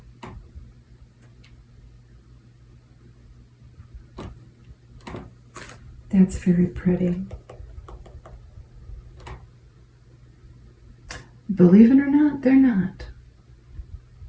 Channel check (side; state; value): both; identical; correlation 1.00